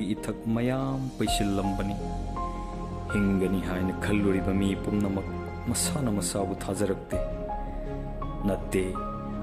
इथक मयाम पैसिल्लंबनी हिंगनी हायना खल्लुरिबा मी पुमनमक मसाना मसाबु थाजरक्ते नत्ते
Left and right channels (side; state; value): both; identical; correlation 1.00